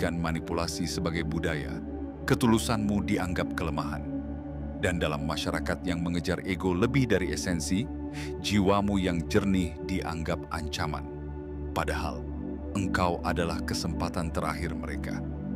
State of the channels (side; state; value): both; identical; correlation 1.00